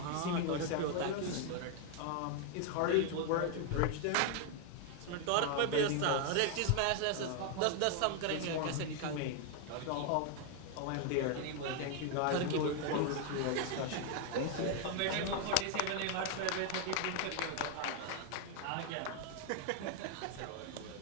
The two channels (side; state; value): both; different; correlation 0.00